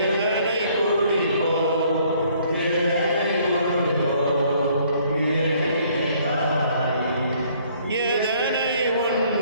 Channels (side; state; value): both; inverted; correlation -0.62